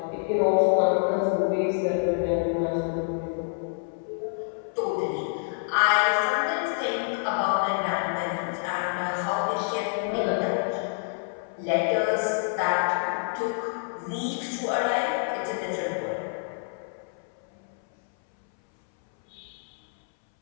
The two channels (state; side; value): silent; right; 60 dB below the other